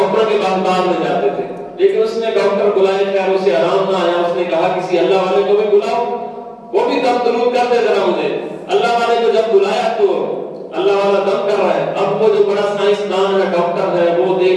کے پاس بعد میں جاتے تھے. لیکن اس نے ڈاکٹر بلائے خیر اسے آرام نہ آیا. اس نے کہا کسی اللہ والے کو بھی بلاؤ وہ بھی دم درود کر دے ذرا مجھے. اللہ والے کو جب بلایا تو اللہ والا دم کر رہا ہے. اب وہ جو بڑا سائنسدان ہے ڈاکٹر ہے وہ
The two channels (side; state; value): both; identical; correlation 1.00